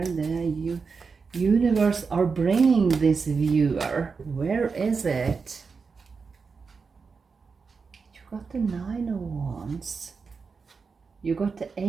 the universe are bringing this viewer? Where is it? You got the Nine of Wands. You got the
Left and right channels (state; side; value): quieter; left; 5.0 dB